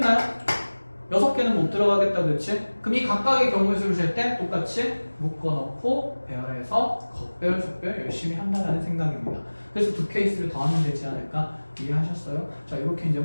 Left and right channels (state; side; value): inverted; both; correlation -1.00